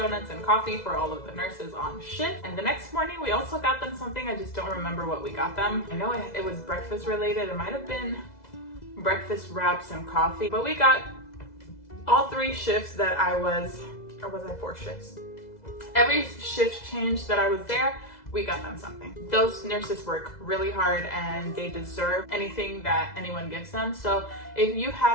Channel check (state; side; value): late; right; 2.0 ms